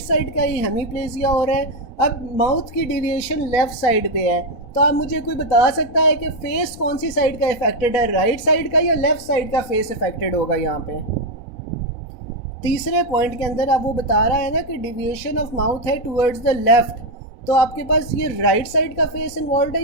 साइड का ही हेमीप्लेजिया हो रहा है। अब माउथ की डिविएशन लेफ्ट साइड पे है, तो आप मुझे कोई बता सकता है कि फेस कौन सी साइड का इफेक्टेड है, राइट साइड का या लेफ्ट साइड का फेस इफेक्टेड होगा? यहाँ पे तीसरे पॉइंट के अंदर अब वो बता रहा है ना कि डिविएशन ऑफ माउथ है टूवर्ड्स द लेफ्ट, तो आपके पास ये राइट साइड का फेस इन्वॉल्व है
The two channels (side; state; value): right; late; 4.0 ms